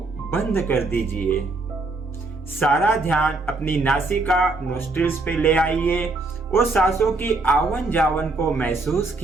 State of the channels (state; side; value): quieter; left; 3.4 dB